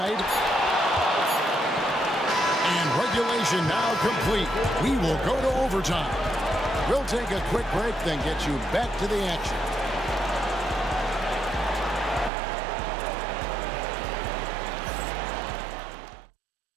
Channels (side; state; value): left; drops out; at 12.3 s